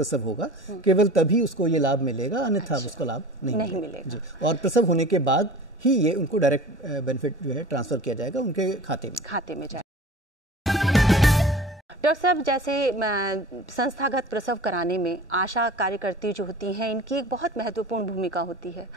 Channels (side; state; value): both; normal; correlation 0.39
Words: होगा केवल तभी उसको ये लाभ मिलेगा, अन्यथा उसको लाभ नहीं मिलेगा। जी। और प्रसव होने के बाद ही ये उनको डायरेक्ट बेनिफिट जो है ट्रांसफर किया जाएगा उनके खाते में जाएगा। डॉक्टर साहब, जैसे संस्थागत प्रसव कराने में आशा कार्यकर्ती जो होती हैं इनकी एक बहुत महत्वपूर्ण भूमिका होती है,